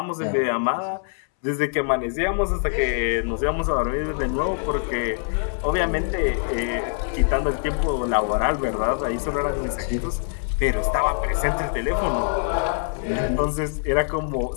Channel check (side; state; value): right; silent; 63 dB below the other